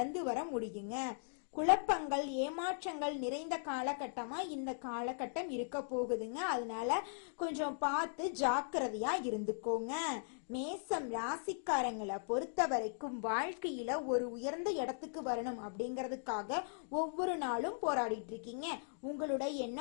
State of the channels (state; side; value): silent; right; digital silence